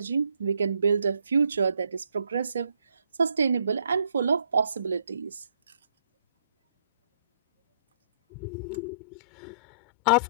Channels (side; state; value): both; inverted; correlation -0.67